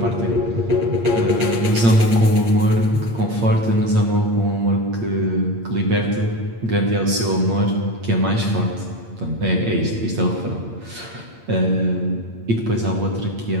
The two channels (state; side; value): late; left; 8.7 ms